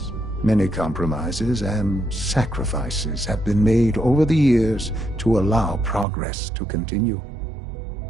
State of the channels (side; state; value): left; drops out; at 6.1 s